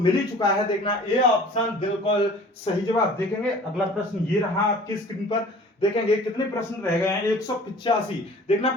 ही चुका है, देखना ए ऑप्शन, बिल्कुल सही जवाब। देखेंगे अगला प्रश्न ये रहा आपकी स्क्रीन पर, देखेंगे कितने प्रश्न रह गए हैं, 185। देखना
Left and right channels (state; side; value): normal; both; correlation 0.47